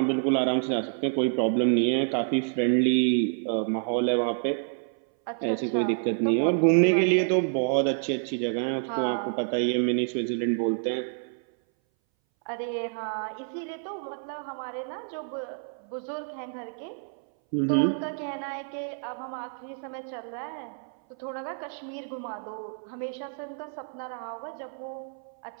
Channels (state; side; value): silent; left; 59 dB below the other